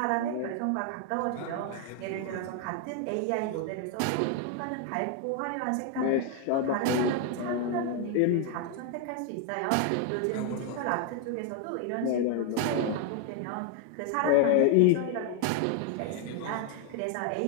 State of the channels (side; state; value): both; different; correlation 0.01